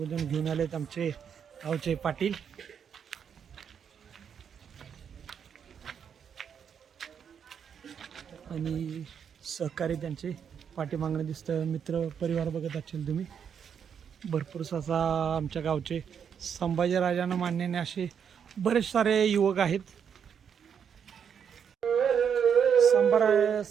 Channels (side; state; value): left; quieter; 7.6 dB